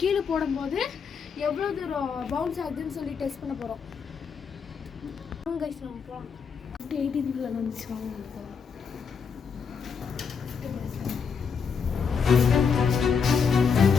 கீழே போடும்போது எவ்வளோ தூரம் பவுன்ஸ் ஆகுதுன்னு சொல்லி டெஸ்ட் பண்ண போகிறோம். கைஸ் நம்ம போகலாம். 18th ஃப்ளோர் வந்துச்சு, வாங்க போகலாம்.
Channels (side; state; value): right; quieter; 6.1 dB